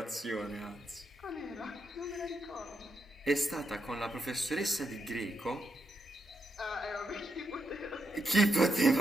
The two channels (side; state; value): both; normal; correlation 0.83